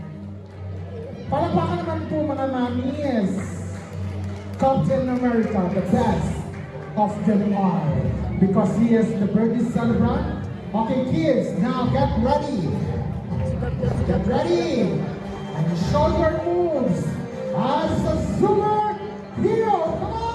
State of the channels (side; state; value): both; identical; correlation 1.00